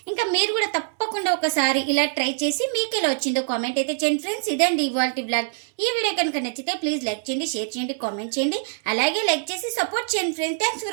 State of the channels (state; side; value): silent; left; 63 dB below the other